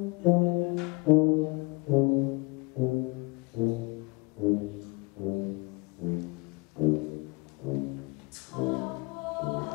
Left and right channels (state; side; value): quieter; right; 27.9 dB